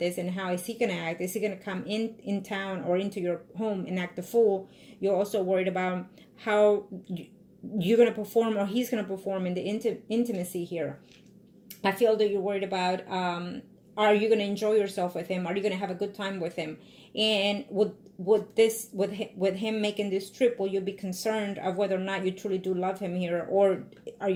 this, and how is he going to act? Is he going to come in town or into your home and act the fool? You're also worried about how you're going to perform, or he's going to perform in the intimacy here. I feel that you're worried about are you going to enjoy yourself with him? Are you going to have a good time with him? And with him making this trip, will you be concerned of whether or not you truly do love him here, or are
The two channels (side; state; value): both; identical; correlation 1.00